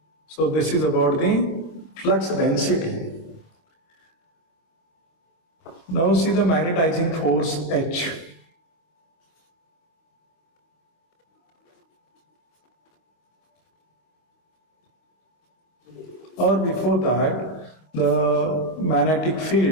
So this is about the flux density. Now see the magnetizing force H. Or before that, the magnetic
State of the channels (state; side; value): late; right; 25 ms